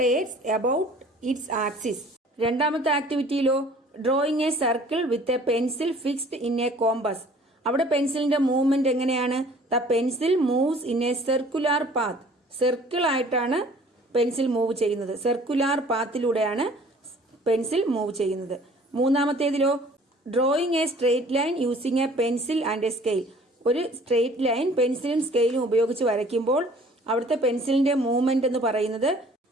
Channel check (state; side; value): normal; both; correlation 0.52